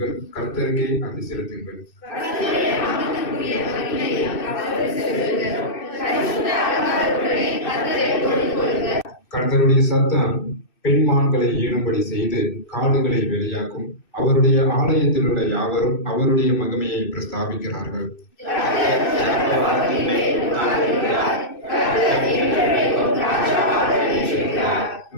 கர்த்தருக்கே அதை செலுத்துங்கள். கர்த்தருடைய சத்தம் பெண்மான்களை ஈடும்படி செய்து காடுகளை வெளியாக்கும். அவருடைய ஆலயத்தில் உள்ள யாவரும் அவருடைய மகிமையை பிரஸ்தாபிக்கிறார்கள்.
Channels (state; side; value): late; right; 2.6 ms